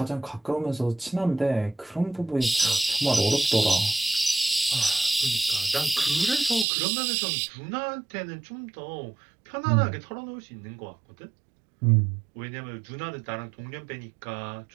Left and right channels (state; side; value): drops out; left; at 6.7 s